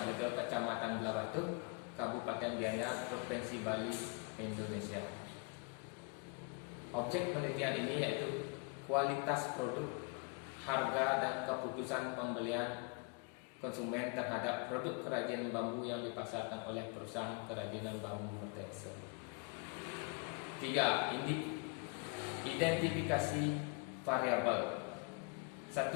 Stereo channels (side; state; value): right; quieter; 32.3 dB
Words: Blega, Kecamatan Belabatu, Kabupaten Gianyar, Provinsi Bali, Indonesia. Objek penelitian ini yaitu kualitas produk, harga, dan keputusan pembelian konsumen terhadap produk kerajinan bambu yang dipasarkan oleh perusahaan kerajinan bambu Mertese. 3. Identifikasi variabel. 1.